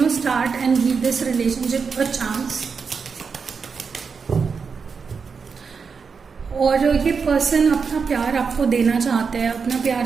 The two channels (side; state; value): left; quieter; 5.5 dB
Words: start and give this relationship a chance. और ये पर्सन अपना प्यार आपको देना चाहते हैं, अपना प्यार